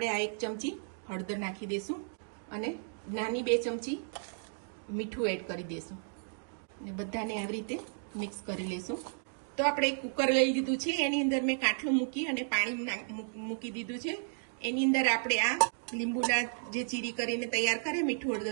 આ 1 ચમચી હળદર નાખી દેશું અને નાની 2 ચમચી મીઠું એડ કરી દેશું અને બધાને આવી રીતે મિક્સ કરી લેશું। તો આપણે એક કુકર લઈ લીધું છે, એની અંદર મેં કાઠું મૂકી અને પાણી મૂકી દીધું છે। એની અંદર આપણે આ લીંબુના જે ચીરી કરીને તૈયાર કરે મીઠું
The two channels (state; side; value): silent; left; digital silence